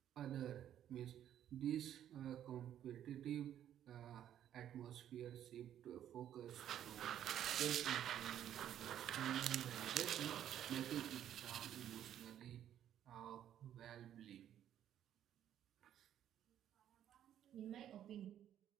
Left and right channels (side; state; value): left; quieter; 10.7 dB